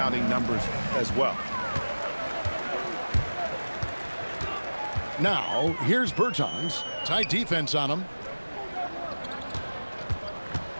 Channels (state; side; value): inverted; both; correlation -1.00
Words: numbers as well. Now, here's Bertans. Tight defense on him.